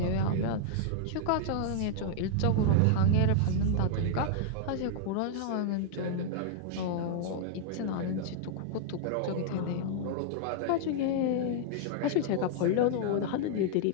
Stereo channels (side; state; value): both; different; correlation -0.01